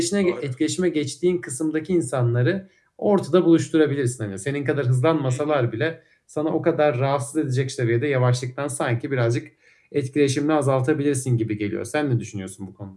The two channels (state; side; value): identical; both; correlation 1.00